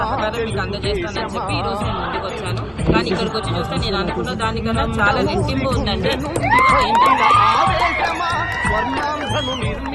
మీకు అందజేస్తానని చెప్పి ఈ రోజు నేను ముందుకు వచ్చాను. కానీ ఇక్కడికి వచ్చి చూస్తే నేను అనుకున్న దానికన్నా చాలా రెట్టింపు ఉందండి.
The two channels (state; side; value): identical; both; correlation 1.00